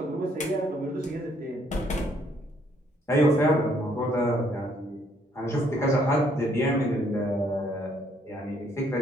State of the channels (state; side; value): normal; both; correlation 0.67